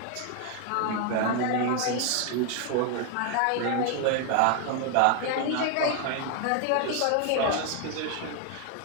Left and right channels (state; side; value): different; both; correlation 0.01